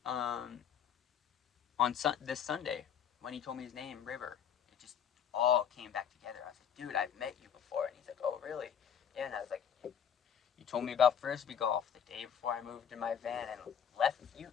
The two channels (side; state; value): right; quieter; 8.4 dB